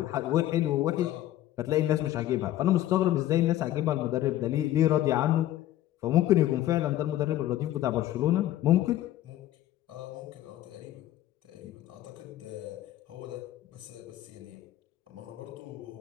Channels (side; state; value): right; quieter; 13.6 dB